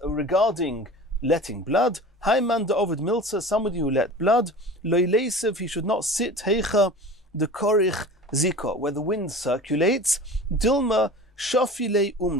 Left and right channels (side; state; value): both; normal; correlation 0.38